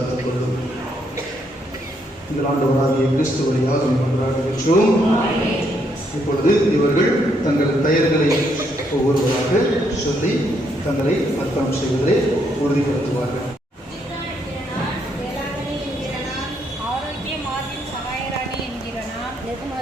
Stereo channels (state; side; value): normal; both; correlation 0.74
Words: கொள்ளும். எங்கள் ஆண்டவராகிய கிறிஸ்து வழியாக கொண்டாடுகின்றோம். இப்பொழுது இவர்கள் தங்கள் பெயர்களை ஒவ்வொருவராக சொல்லி தங்களை அர்ப்பணம் செய்வதை உறுதிப்படுத்துவார்கள். ஆரோக்கிய மார்பின் சகாயராணி என்கிற நான்,